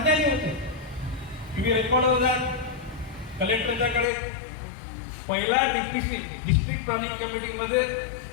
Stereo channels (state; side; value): drops out; right; at 4.0 s